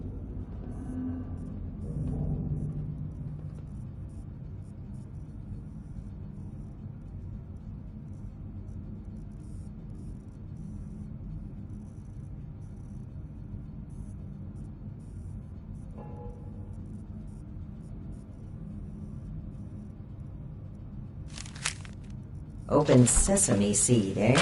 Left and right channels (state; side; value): identical; both; correlation 1.00